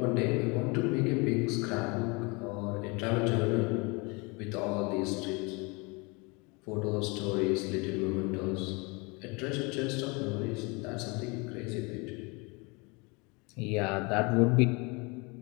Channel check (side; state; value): right; quieter; 28.5 dB